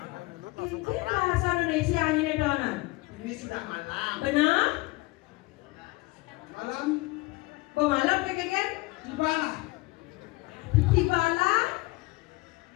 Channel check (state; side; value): quieter; right; 22.6 dB